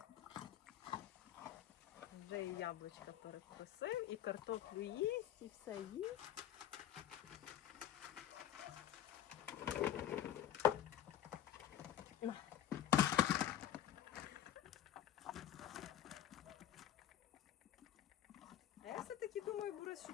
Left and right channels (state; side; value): quieter; right; 11.2 dB